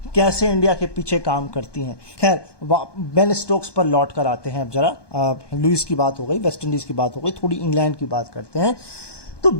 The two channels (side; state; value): right; late; 1.2 ms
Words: कैसे इंडिया के पीछे काम करती हैं। खैर, बेन स्टोक्स पर लौट कर आते हैं अब जरा। लुइस की बात हो गई, वेस्ट इंडीज़ की बात हो गई, थोड़ी इंग्लैंड की बात करते हैं। तो